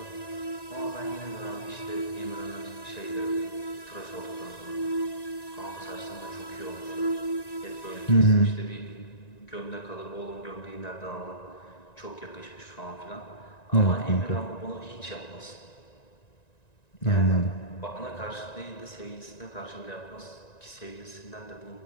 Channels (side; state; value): right; late; 1.9 ms